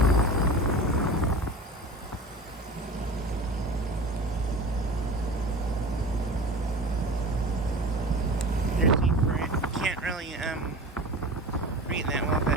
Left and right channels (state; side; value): normal; both; correlation 0.35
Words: There's heat for it. Can't really read that well,